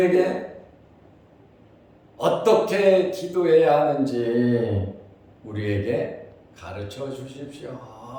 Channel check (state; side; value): identical; both; correlation 1.00